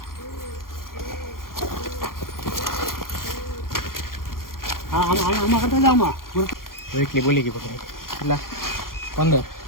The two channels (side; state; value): right; late; 0.92 ms